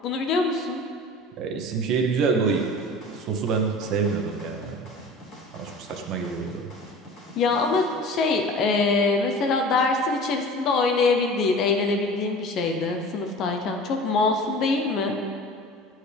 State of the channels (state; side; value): normal; both; correlation 0.39